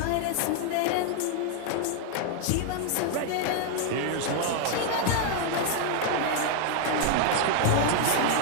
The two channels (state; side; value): different; both; correlation 0.00